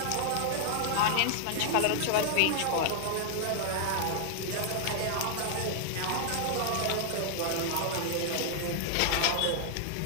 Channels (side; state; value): both; different; correlation -0.01